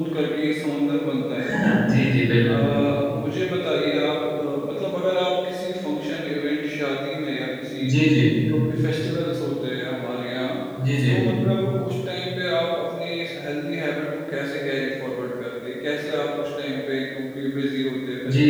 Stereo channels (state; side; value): identical; both; correlation 1.00